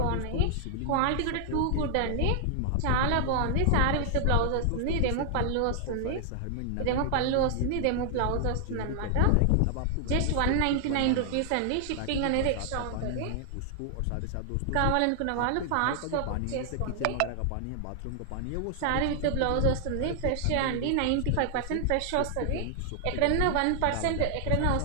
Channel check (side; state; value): both; different; correlation 0.00